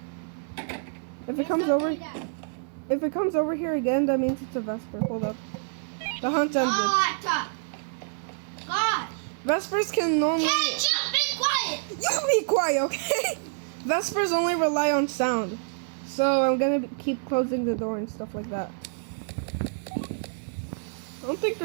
If it comes over here again, that means it's a Vesper. Hold up. The hunt ended. Vespers can only... You be quiet, okay? Vespers only rely on sound. So I'm gonna keep closing the door and stuff like that. I don't think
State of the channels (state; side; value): silent; left; digital silence